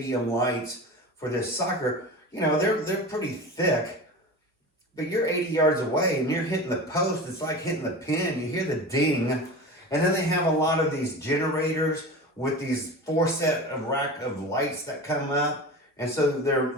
lights for this soccer. You know, they're pretty thick, but you're 80 yards away and you're hitting the post. It's like hitting the pin. You hear the ding. And then they have a lot of these generators with these 4 set of rack of lights that come up. And so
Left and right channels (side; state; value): both; normal; correlation 0.31